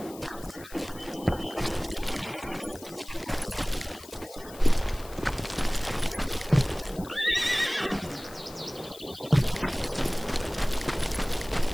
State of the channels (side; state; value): left; noise; hiss, 18 dB below the sound